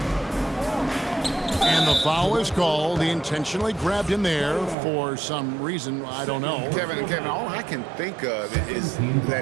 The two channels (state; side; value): drops out; left; at 4.8 s